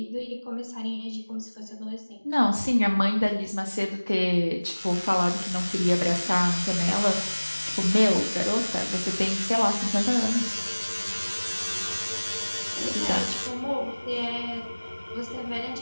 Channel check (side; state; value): both; inverted; correlation -1.00